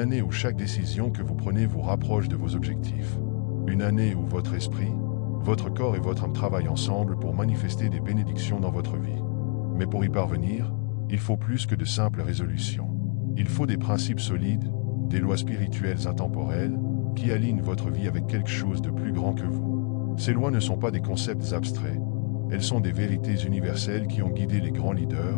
où chaque décision que vous prenez vous rapproche de vos objectifs. Une année où votre esprit, votre corps et votre âme travaillent ensemble pour manifester des bénédictions dans votre vie. Mais pour y parvenir, il faut plus que de simples résolutions. Il faut des principes solides, des lois spirituelles intemporelles, qui alignent votre vie avec quelque chose de plus grand que vous. Ces lois ne sont pas des concepts abstraits. Elles sont des vérités universelles qui ont guidé les grands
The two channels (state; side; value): quieter; right; 36.6 dB